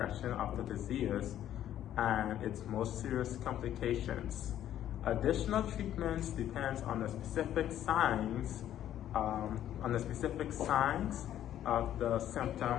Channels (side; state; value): right; quieter; 11.5 dB